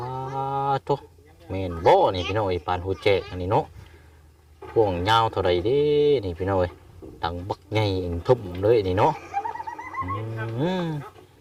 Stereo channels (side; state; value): both; identical; correlation 1.00